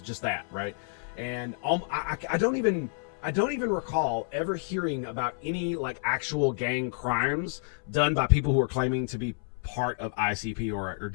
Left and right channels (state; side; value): silent; right; 58 dB below the other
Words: just that, right? And I don't even recall ever hearing about any, like, actual gang crimes done by people who are claiming to be part of ICP or